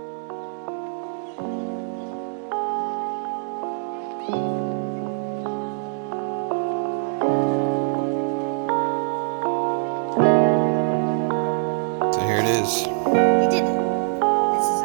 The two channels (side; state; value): left; silent; digital silence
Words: So here it is. We did it. This is